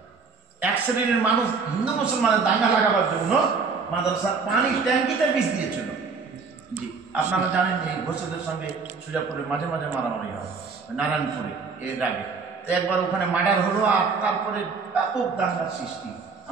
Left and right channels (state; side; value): quieter; left; 4.9 dB